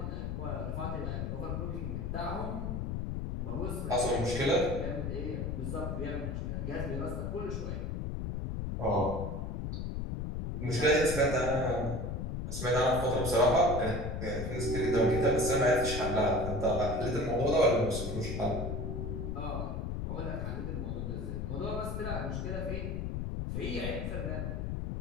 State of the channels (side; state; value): left; noise; rumble, 3 dB below the sound